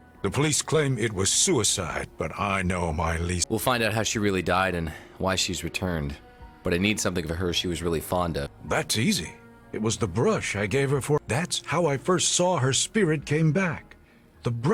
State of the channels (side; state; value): both; identical; correlation 1.00